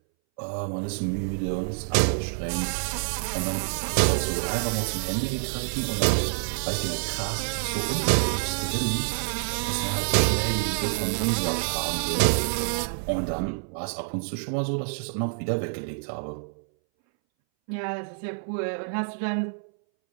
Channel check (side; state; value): left; silent; 60 dB below the other